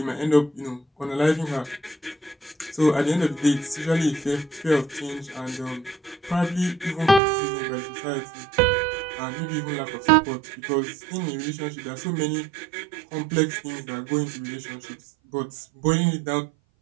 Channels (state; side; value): drops out; left; at 7.2 s